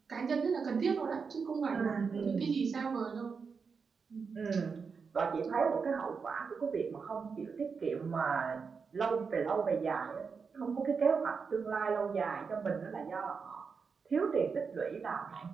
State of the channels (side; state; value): left; quieter; 5.5 dB